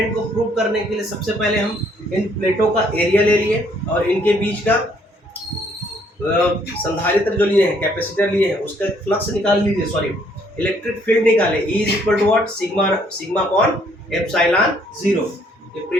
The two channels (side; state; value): both; normal; correlation 0.66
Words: को प्रूव करने के लिए सबसे पहले हम इन प्लेटों का एरिया ले लिए और इनके बीच का संधारित्र जो लिए हैं, कैपेसिटर लिए हैं, उसका फ्लक्स निकाल लीजिए, सॉरी इलेक्ट्रिक फील्ड निकाले। E is equal to what? Sigma upon epsilon 0। ये